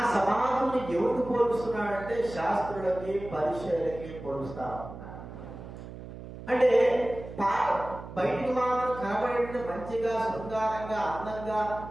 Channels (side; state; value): right; noise; hum, 12 dB below the sound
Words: సమాధిని ఎవరికి పోలుస్తున్నాడంటే శాస్త్రులకి, పరిచయులకి పోలుస్తా ఉన్నాడు. అంటే బయటికి మాత్రం కనబడి మంచిగా శృంగారంగా అందంగా